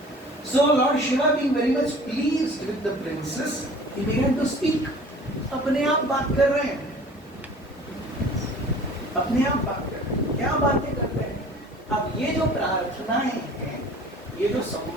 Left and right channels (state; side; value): normal; both; correlation 0.46